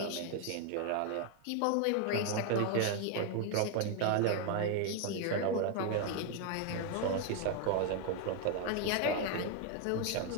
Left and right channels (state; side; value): different; both; correlation 0.00